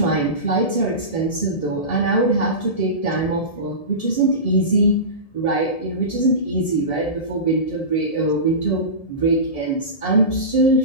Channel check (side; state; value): right; late; 1.7 ms